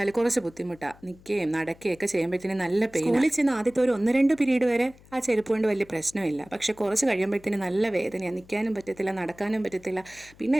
കുറച്ച് ബുദ്ധിമുട്ടാണ്. നിൽക്കുകയും നടക്കുകയൊക്കെ ചെയ്യുമ്പോഴത്തേനും നല്ല പെയിൻ. സ്കൂളിൽ ചെന്ന് ആദ്യത്തെ ഒരു 1-2 പീരീഡ് വരെ ആ ചെരുപ്പ് കൊണ്ട് വലിയ പ്രശ്നമില്ല. പക്ഷെ കുറച്ച് കഴിയുമ്പോഴത്തേനും നല്ല വേദനയാണ്. നിൽക്കാനും പറ്റത്തില്ല, നടക്കാനും പറ്റത്തില്ല. പിന്നെ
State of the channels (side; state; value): left; noise; hum, 25 dB below the sound